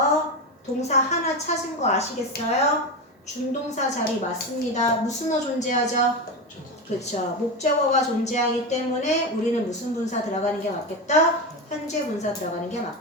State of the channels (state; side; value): normal; both; correlation 0.18